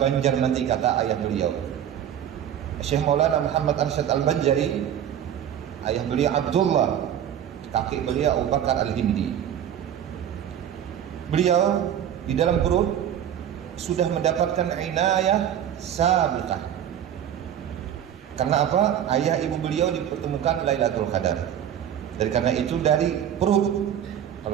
nanti, kata ayah beliau. Syekh Maulana Muhammad Arsyad Al-Banjari, ayah beliau Abdullah, kakek beliau Abu Bakar Al-Hindi. Beliau di dalam perut sudah mendapatkan inayah sabiqah. Karena apa? Ayah ibu beliau dipertemukan Lailatul Qadar. Dan karena itu dari perut,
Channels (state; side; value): quieter; left; 10.0 dB